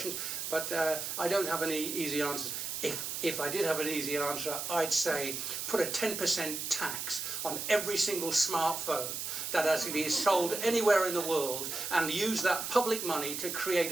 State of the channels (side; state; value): right; noise; hiss, 4 dB below the sound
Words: But I don't have any easy answers. If I did have an easy answer, I'd say put a 10% tax on every single smartphone that actually is sold anywhere in the world, and use that public money to create